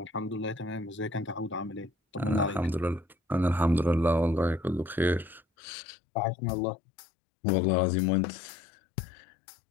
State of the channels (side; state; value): right; drops out; at 5.5 s